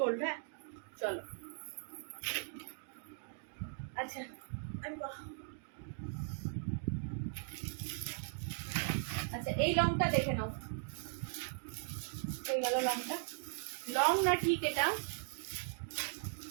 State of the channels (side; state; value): left; silent; digital silence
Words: হ্যাঁ চলো, আচ্ছা আমি আচ্ছা এই লংটা দেখে নাও, হয়ে গেল লংটা, লং না ঠিক, এটা